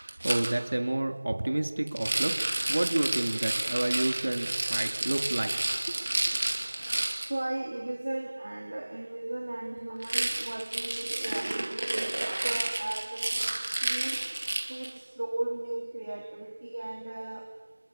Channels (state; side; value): inverted; both; correlation -1.00